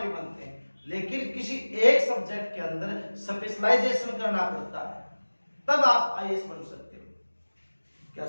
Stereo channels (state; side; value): inverted; both; correlation -1.00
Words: भी बनते हैं, लेकिन किसी एक सब्जेक्ट के अंदर स्पेशलाइजेशन करना पड़ता है, तब आप आईएएस बन सकते हो। क्या